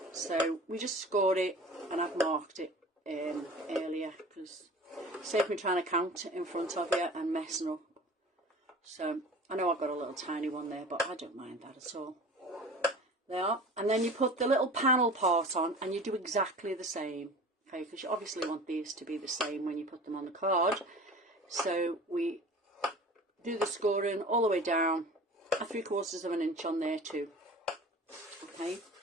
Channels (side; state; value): both; normal; correlation 0.40